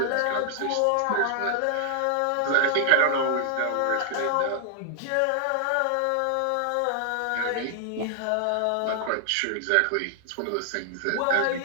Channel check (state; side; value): different; both; correlation -0.01